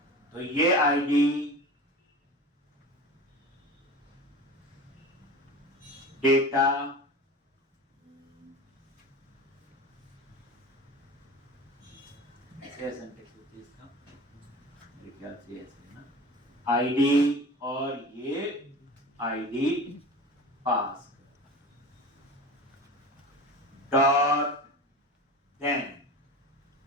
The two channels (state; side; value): normal; both; correlation 0.34